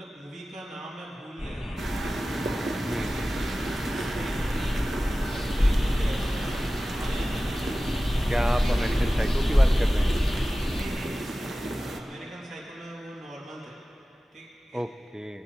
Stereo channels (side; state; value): both; normal; correlation 0.96